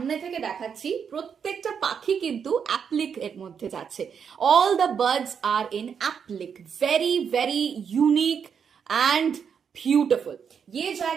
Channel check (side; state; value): left; quieter; 7.1 dB